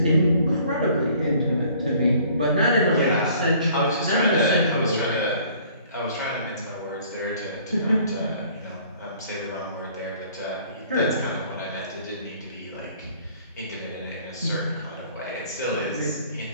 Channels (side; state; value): both; inverted; correlation -0.55